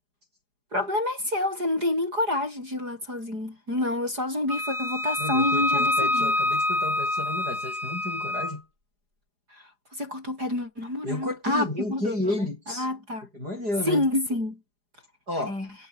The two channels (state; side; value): late; left; 4.9 ms